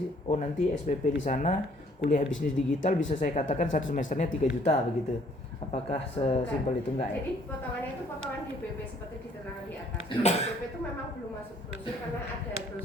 nanti SPP di sana kuliah bisnis digital bisa saya katakan 1 semesternya 3 juta begitu. Apakah sesimpel itu? Enggak ya? Jadi potongannya itu potongan DPP seperti diterangkan di atas. DPP itu memang belum masuk brosur karena ada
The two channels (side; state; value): both; normal; correlation 0.61